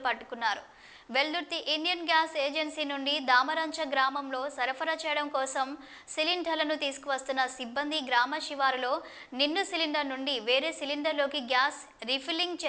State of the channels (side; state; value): both; identical; correlation 1.00